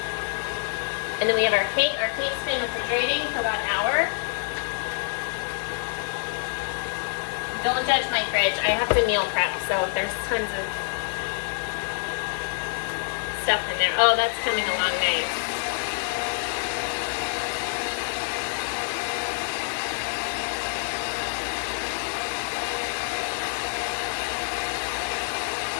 And then we have our cake. Our cake's been refrigerating for about an hour. Don't judge my fridge. I have to meal prep, so there's tons of stuff in there. Oh, that's coming along nice.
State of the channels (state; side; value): silent; right; digital silence